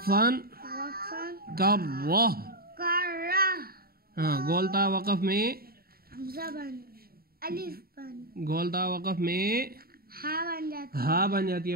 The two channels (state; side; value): late; left; 0.44 ms